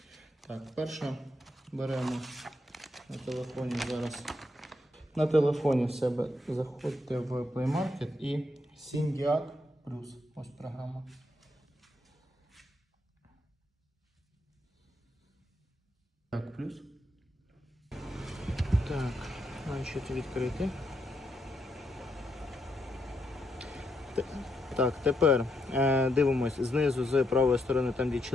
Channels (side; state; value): both; normal; correlation 0.79